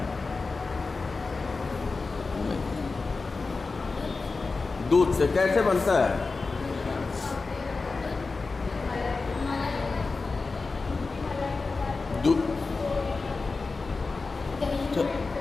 दूध से। कैसे बनता है?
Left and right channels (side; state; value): right; quieter; 4.0 dB